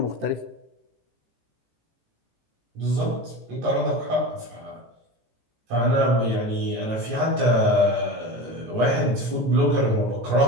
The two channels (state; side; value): late; left; 18 ms